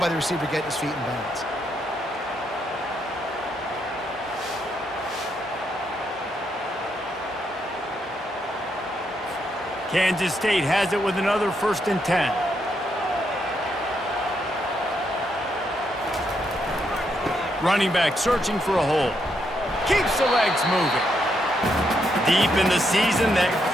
the receiver getting his feet in bounds. Kansas State has it with another 1st and 10. Running back searching for a hole. Keeps the legs moving. Deep in the season, that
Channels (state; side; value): normal; both; correlation 0.78